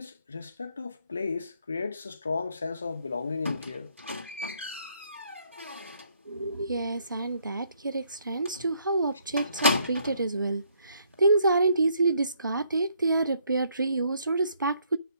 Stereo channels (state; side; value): inverted; both; correlation -0.69